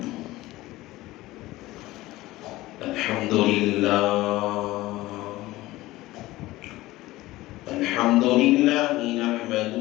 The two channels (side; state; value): right; quieter; 17.9 dB